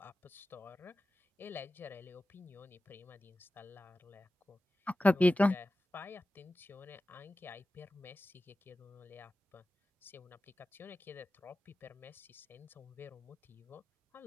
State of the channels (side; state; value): both; normal; correlation 0.94